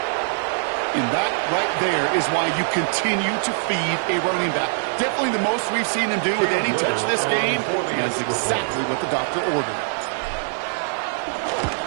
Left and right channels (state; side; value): silent; left; 64 dB below the other